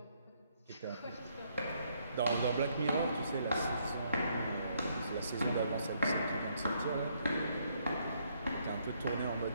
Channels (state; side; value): inverted; both; correlation -0.71